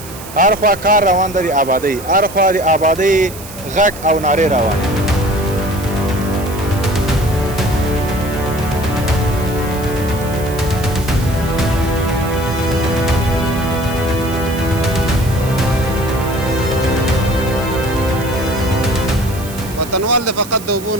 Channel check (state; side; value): noise; right; hiss, 15 dB below the sound